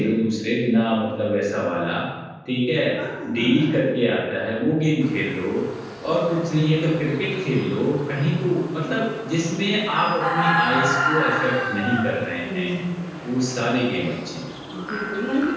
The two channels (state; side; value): identical; both; correlation 1.00